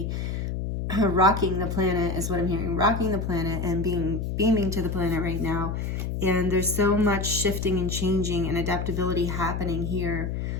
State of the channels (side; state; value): left; noise; hum, 3 dB below the sound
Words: rocking the planet is what I'm hearing. Rocking the planet and beaming to the planet right now. And there's so much shifting and changing and adaptability happening here.